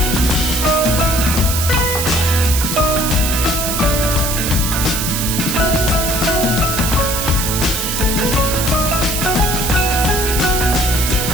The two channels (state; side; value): noise; right; hiss, 2 dB below the sound